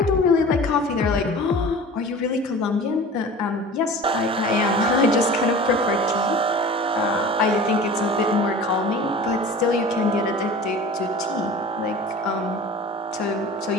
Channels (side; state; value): both; normal; correlation 0.39